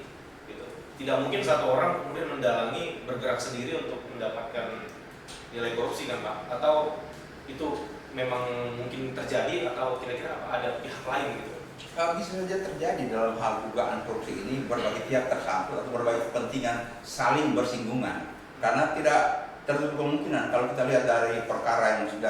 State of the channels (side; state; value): both; identical; correlation 1.00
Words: Gitu. Tidak mungkin satu orang kemudian mendalangi bergerak sendiri untuk mendapatkan nilai korupsi kan Pak? Atau itu memang mungkin terjadi atau kira-kira apa ada pihak lain gitu? Bisa saja terjadi dalam hal dugaan korupsi ini berbagai pihak tersangkut atau berbagai kepentingan saling bersinggungan karena tidak tertutup kemungkinan kalau kita lihat dari perkara yang